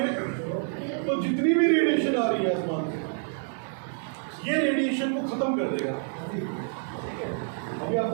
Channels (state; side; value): silent; left; 56 dB below the other